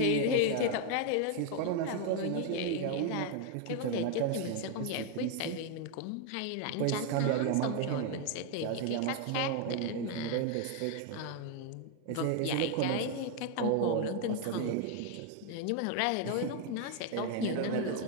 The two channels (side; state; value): both; different; correlation 0.01